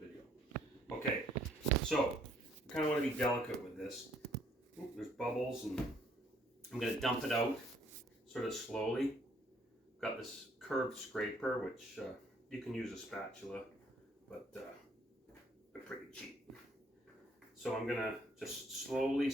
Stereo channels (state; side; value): normal; both; correlation 0.65